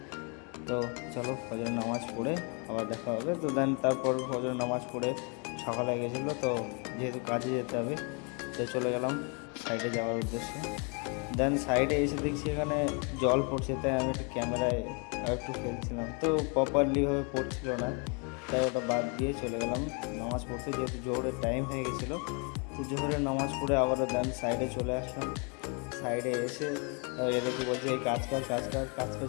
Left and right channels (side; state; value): right; quieter; 35.4 dB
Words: তো চলো ফজরের নামাজ পড়ে আবার দেখা হবে। তো দেন তারপর ফজরের নামাজ পড়ে সকাল হয়ে গেছিলো, তো যেহেতু কাজে যেতে হবে তো চলে গেলাম সাইডে যাওয়ার উদ্দেশ্যে। দেন সাইডে এসে দেখছি এখানে জল পড়ছে, তাই আমি একটু ক্যামেরায় একটু ফেলছিলাম, তো প্রপারলিভাবে পড়ছিল না, তাই ওটা বাদ দিয়ে চলে গেলাম নামাজ পড়তে, যেহেতু জোহরের টাইম হয়ে গেছিলো। তো জোহরের নামাজ পড়ে আবারও দেন সাইডে চলে আসলাম। সাইডে এসে এদেরকে বলছে এই কাজ কর কাজ কর, কাজ